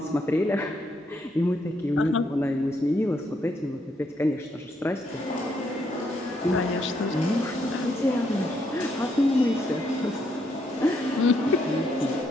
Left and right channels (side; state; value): both; normal; correlation 0.75